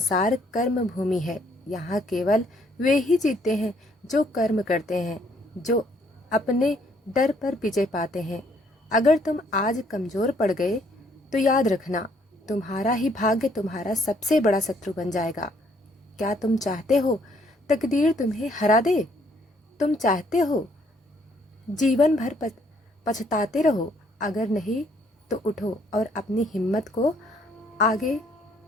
कर्म भूमि है। यहाँ केवल वे ही जीतते हैं जो कर्म करते हैं, जो अपने डर पर विजय पाते हैं। अगर तुम आज कमजोर पड़ गए तो याद रखना, तुम्हारा ही भाग्य तुम्हारा सबसे बड़ा शत्रु बन जाएगा। क्या तुम चाहते हो तकदीर तुम्हें हरा दे? तुम चाहते हो जीवन भर पछताते रहो? अगर नहीं तो उठो और अपनी हिम्मत को आगे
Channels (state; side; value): normal; both; correlation 0.67